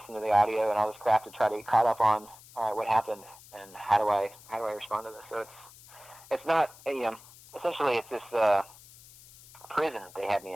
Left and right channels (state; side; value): noise; left; hiss, 22 dB below the sound